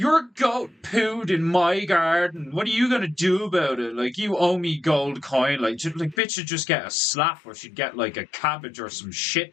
goat pooed in my garden. What are you gonna do about it? Like, you owe me gold coin. Like, bitch should just get a slap, or she'd get like a cabbage or some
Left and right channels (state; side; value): drops out; right; at 6.2 s